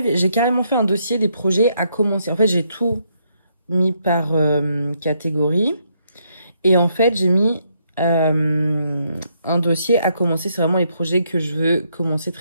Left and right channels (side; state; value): both; inverted; correlation -0.75